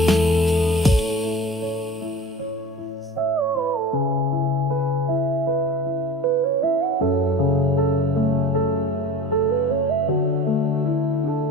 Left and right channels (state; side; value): normal; both; correlation 0.38